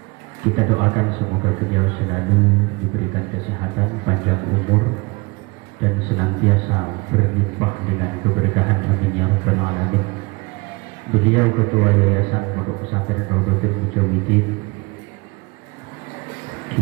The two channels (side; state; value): left; quieter; 26.3 dB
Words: Kita doakan semoga beliau selalu diberikan kesehatan, panjang umur, dan senantiasa berlimpah dengan keberkahan. Amin ya rabbal alamin. Beliau Ketua Yayasan Pondok Pesantren Raudhatul Mujahidin,